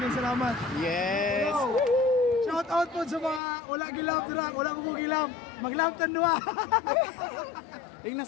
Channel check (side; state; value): right; drops out; at 3.4 s